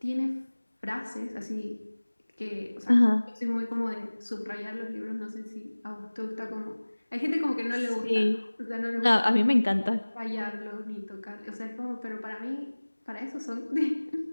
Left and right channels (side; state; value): both; inverted; correlation -1.00